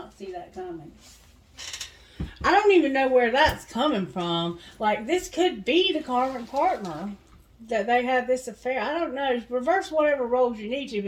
see that coming. I don't even know where that's coming from. Like, this could be the karmic partner that they have this affair. I don't know. Reverse whatever roles you need to.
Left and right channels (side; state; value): both; identical; correlation 1.00